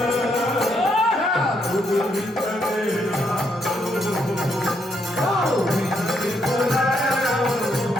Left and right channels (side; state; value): both; normal; correlation 0.76